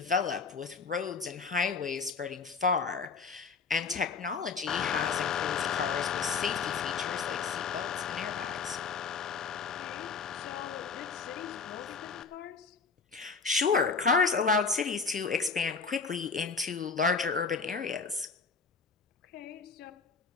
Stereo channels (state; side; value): quieter; right; 5.1 dB